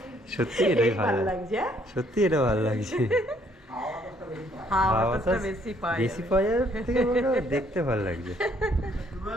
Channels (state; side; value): normal; both; correlation 0.66